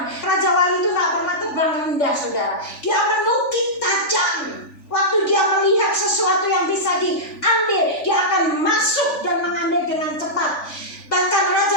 Raja Wali itu tak pernah terbang rendah, saudara. Dia menukik tajam. Waktu dia melihat sesuatu yang bisa diambil, dia akan masuk dan mengambil dengan cepat. Bahkan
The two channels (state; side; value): late; right; 3.4 ms